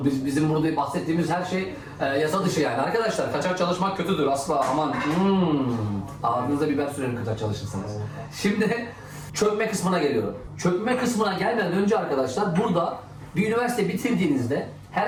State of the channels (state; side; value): identical; both; correlation 1.00